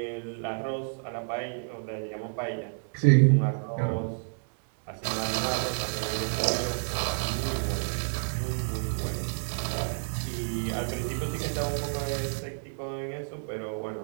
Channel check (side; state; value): left; silent; digital silence